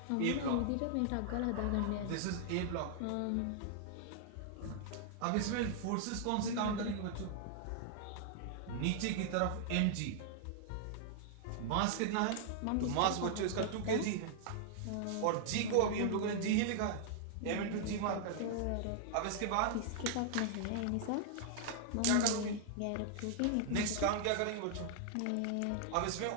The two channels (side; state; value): both; different; correlation -0.01